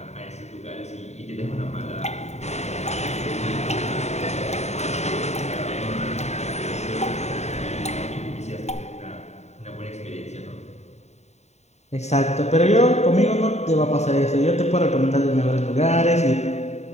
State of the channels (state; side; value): late; right; 0.32 ms